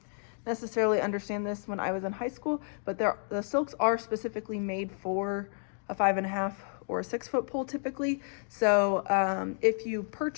necessarily understand this when I was in high school, but the silks are specifically made for a 5.5 or a 6 foot pole typically. So if you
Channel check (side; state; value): right; silent; digital silence